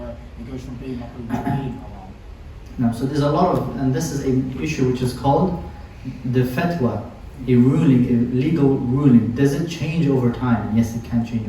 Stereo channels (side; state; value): both; identical; correlation 1.00